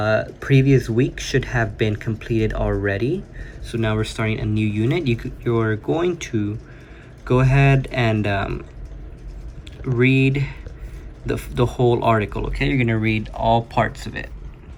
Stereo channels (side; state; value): both; identical; correlation 1.00